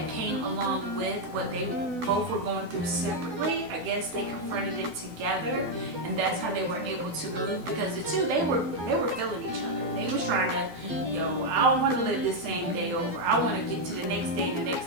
came along with what they both were going through separately. I guess they confronted it together, and that's how they were able to move, because the 2, they were feeling each other. They was trying to, yo, I don't want to live this same day over. I want to get to the next day and the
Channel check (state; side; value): late; left; 12 ms